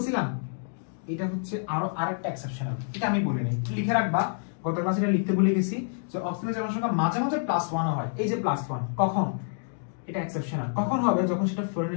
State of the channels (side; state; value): right; silent; digital silence